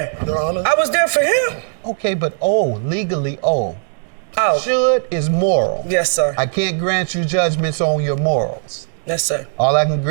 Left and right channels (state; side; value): silent; left; digital silence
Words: Your Honor. I was there for him. Okay, but legally Oh. Should is moral. Yes, sir. I can't grant you judgments on your morals. Yes, sir. All I can